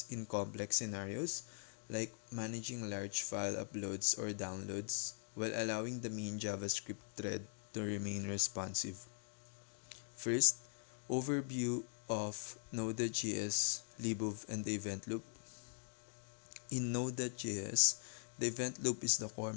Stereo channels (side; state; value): right; silent; digital silence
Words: in complex scenarios, like managing large file uploads or downloads, while allowing the main JavaScript thread to remain responsive. First, overview of Node.js, Libov, and the event loop. In Node.js, the event loop is the core